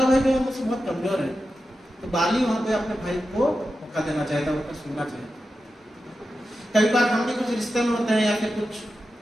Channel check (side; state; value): both; normal; correlation 0.91